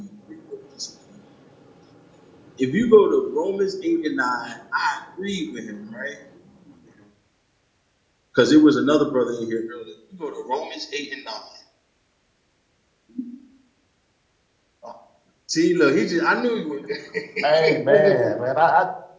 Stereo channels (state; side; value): identical; both; correlation 1.00